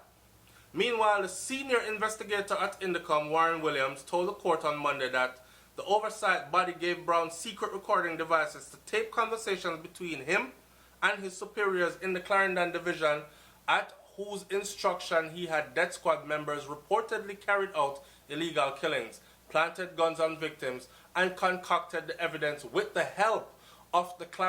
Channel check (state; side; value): identical; both; correlation 1.00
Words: Meanwhile, the senior investigator at Indicom, Warren Williams, told the court on Monday that the oversight body gave Brown secret recording devices to tape conversations between him and his superiors in the Clarendon division, at whose instruction he had death squad members reportedly carried out illegal killings, planted guns on victims, and concocted the evidence with the help of the